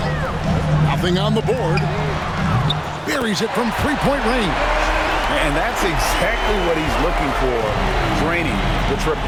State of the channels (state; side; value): identical; both; correlation 1.00